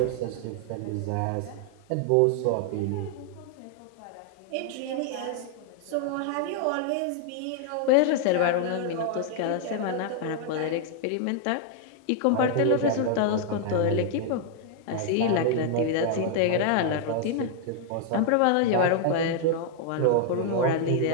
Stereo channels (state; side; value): different; both; correlation 0.00